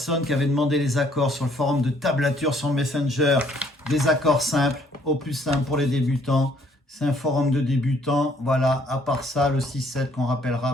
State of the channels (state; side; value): normal; both; correlation 0.63